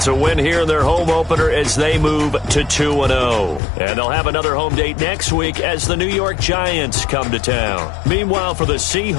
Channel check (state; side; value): drops out; right; at 3.6 s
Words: a win here in their home opener as they move to 2-0. And they'll have another home date next week as the New York Giants come to town. Meanwhile, for the